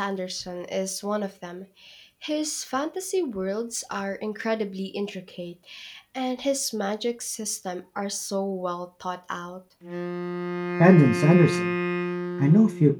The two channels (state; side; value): identical; both; correlation 1.00